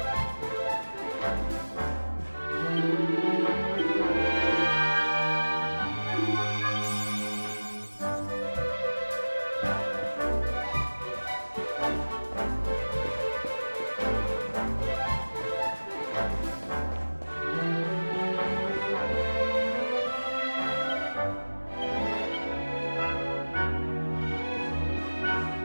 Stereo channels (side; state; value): both; inverted; correlation -1.00